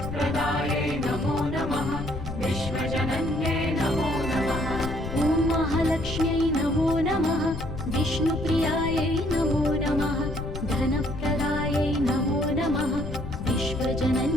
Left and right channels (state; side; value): noise; left; rumble, 8 dB below the sound